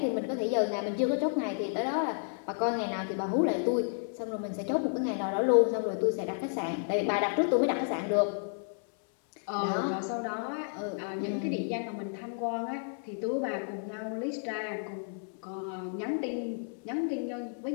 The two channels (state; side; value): silent; right; 57 dB below the other